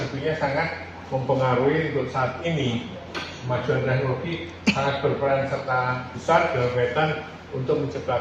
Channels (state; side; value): identical; both; correlation 1.00